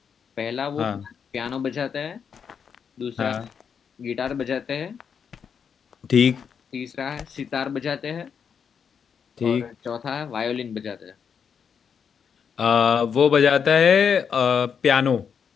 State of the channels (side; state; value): right; quieter; 6.9 dB